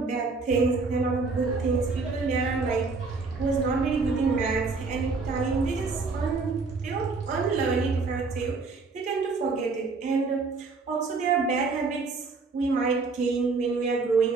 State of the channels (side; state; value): left; quieter; 4.2 dB